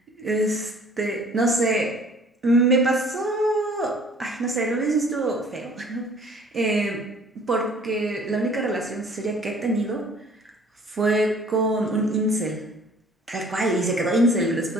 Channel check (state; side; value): normal; both; correlation 0.53